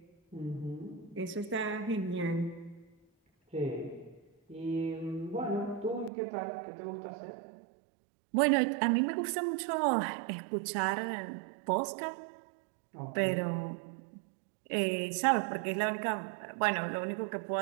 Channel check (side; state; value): left; drops out; at 6.1 s